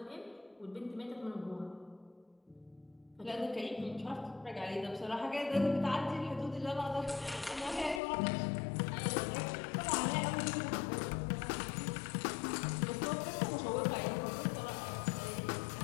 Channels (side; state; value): right; drops out; at 8.0 s